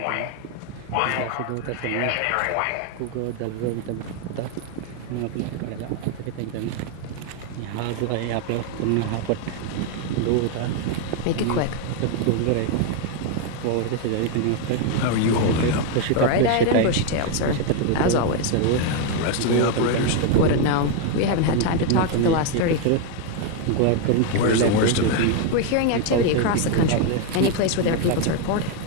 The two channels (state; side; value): different; both; correlation 0.01